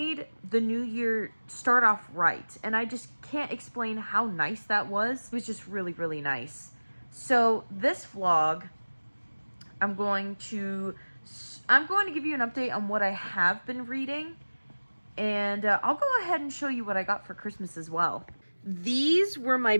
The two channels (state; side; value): inverted; both; correlation -1.00